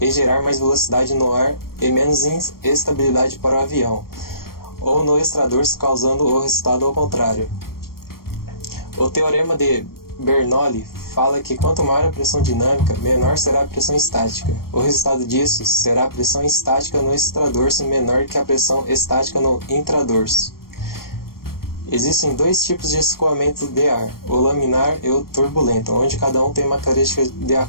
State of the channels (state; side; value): late; right; 0.93 ms